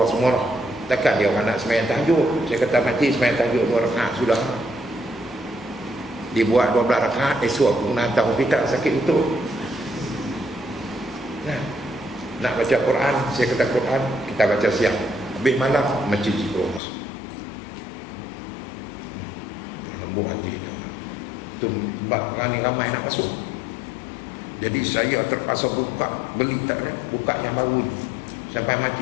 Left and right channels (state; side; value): drops out; right; at 16.8 s